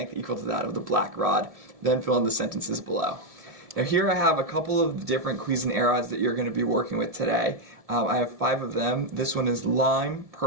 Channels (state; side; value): late; left; 1.7 ms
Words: equal to that of the black rod, then fill in the sentences below. Now here I have a couple of different Cuisenaire rods that you're going to be working with today. I have 5 of them. This one is lime,